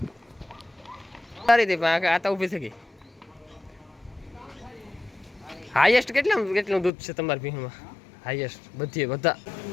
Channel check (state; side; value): drops out; right; at 6.9 s